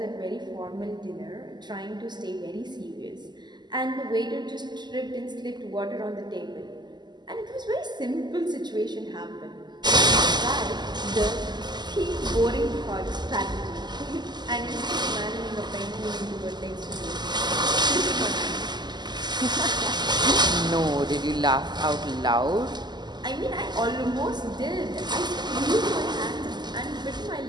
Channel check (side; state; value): left; late; 0.21 ms